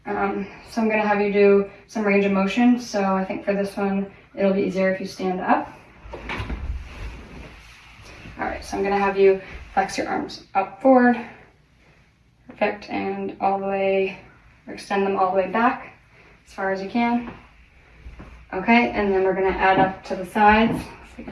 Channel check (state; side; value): identical; both; correlation 1.00